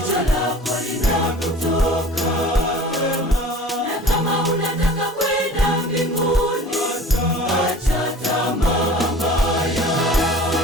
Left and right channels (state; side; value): normal; both; correlation 0.43